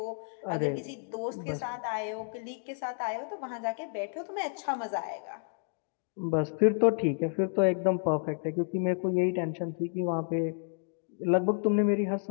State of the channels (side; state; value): right; silent; 57 dB below the other